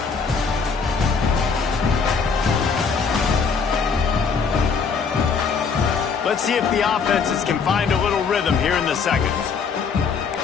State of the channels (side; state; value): right; quieter; 5.5 dB